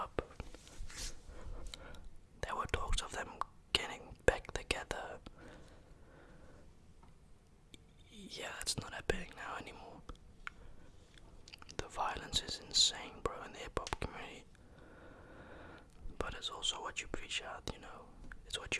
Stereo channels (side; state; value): both; identical; correlation 1.00